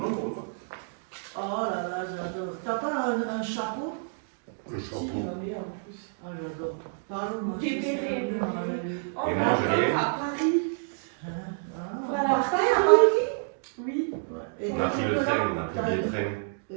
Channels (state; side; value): silent; left; digital silence